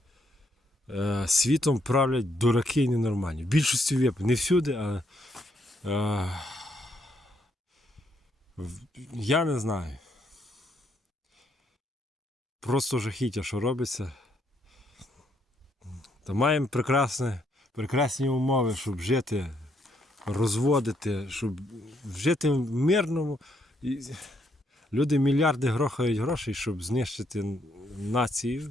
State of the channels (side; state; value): both; normal; correlation 0.73